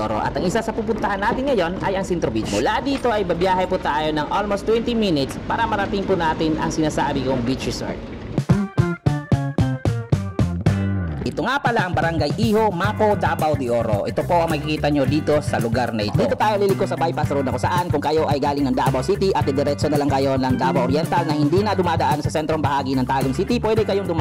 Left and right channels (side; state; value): both; identical; correlation 1.00